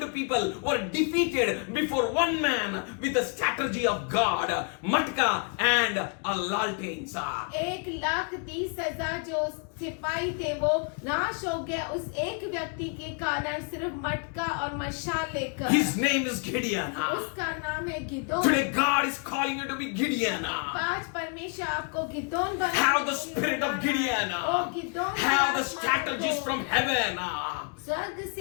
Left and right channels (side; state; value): right; quieter; 39.2 dB